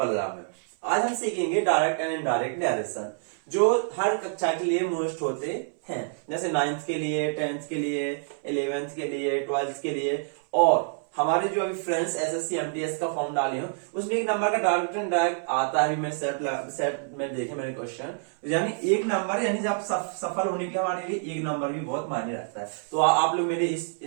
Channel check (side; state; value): left; silent; 60 dB below the other